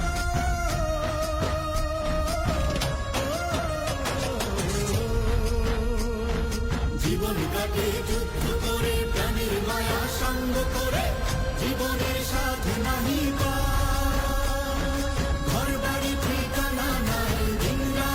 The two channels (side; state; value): both; identical; correlation 1.00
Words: জীবন কাটে যুদ্ধ করে, প্রাণের মায়া সঙ্গ করে, জীবনের সাথে নাহি ঘর বাড়ি ঠিকানা নাই, দিন